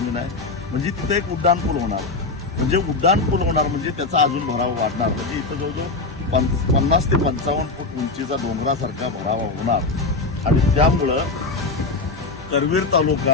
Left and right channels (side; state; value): right; quieter; 3.6 dB